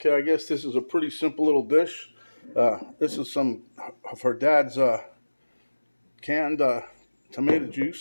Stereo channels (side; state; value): both; inverted; correlation -1.00